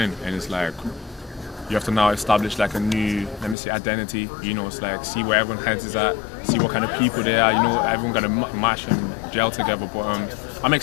and it's like you have to now establish like a new, let me say, identity. It's like see where everyone heads is at, see what kind of people they are. Everyone got to mash and gel together. But I'm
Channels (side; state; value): right; drops out; at 3.6 s